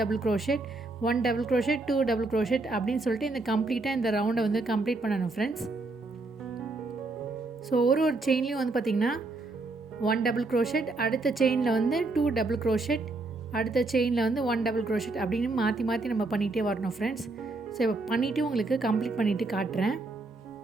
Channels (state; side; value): quieter; left; 3.3 dB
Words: crochet, 1 double crochet, 2 double crochet அப்படின்னு சொல்லிட்டு இந்த கம்ப்ளீட்டாக இந்த ரவுண்டை வந்து கம்ப்ளீட் பண்ணணும் ஃப்ரெண்ட்ஸ். ஸோ ஒரு செயின்லேயும் வந்து பார்த்திங்கன்னா 1 டபுள் க்ரோஷேட், அடுத்த செயினில் வந்து 2 டபுள் க்ரோஷேட், அடுத்த செயினில் வந்து 1 டபுள் க்ரோஷேட் அப்படின்னு மாற்றி மாற்றி நம்ம பண்ணிகிட்டே வரணும் ஃப்ரெண்ட்ஸ். ஸோ இப்போ பண்ணிவிட்டு உங்களுக்கு கம்ப்ளீட் பண்ணிவிட்டு காட்டுறேன்.